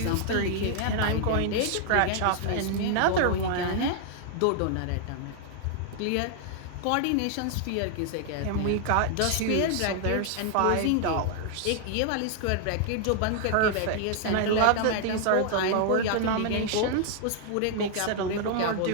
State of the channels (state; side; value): different; both; correlation 0.00